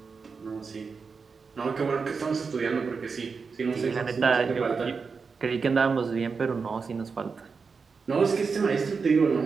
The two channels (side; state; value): left; quieter; 5.1 dB